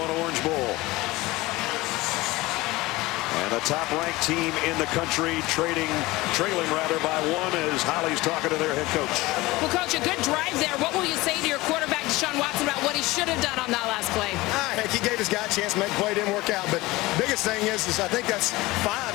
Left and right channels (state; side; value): quieter; right; 20.2 dB